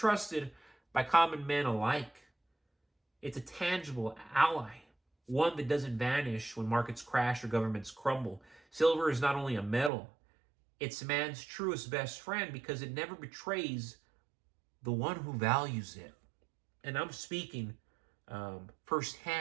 by common men alike. It's a tangible ally, one that doesn't vanish when markets crash or governments crumble. Silver is not only a metal, it's man's truest best friend because it never betrays the one who values it. And I'm speaking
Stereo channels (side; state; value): left; drops out; at 9.9 s